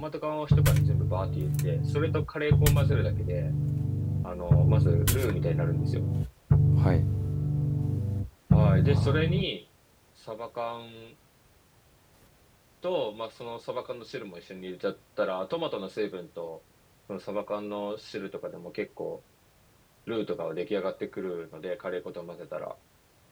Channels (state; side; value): identical; both; correlation 1.00